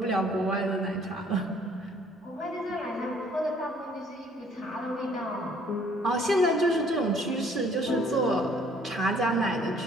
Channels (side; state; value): both; normal; correlation 0.59